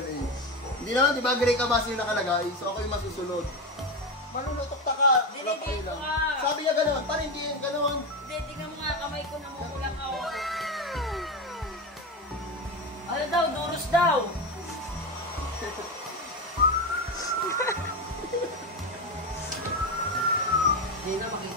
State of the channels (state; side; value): normal; both; correlation 0.16